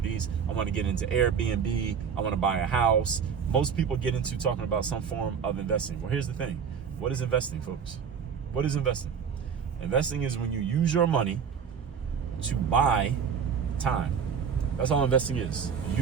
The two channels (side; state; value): left; quieter; 6.9 dB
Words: I want to get into Airbnb. I want to buy a house. Most people get into talking about some form of investing. Well, here's the thing. What is investing, folks? What is investing? Investing is when you use your money to buy time. That's all investing is.